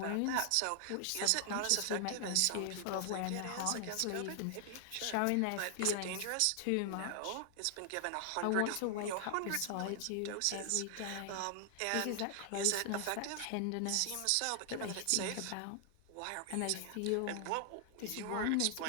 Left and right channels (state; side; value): different; both; correlation 0.00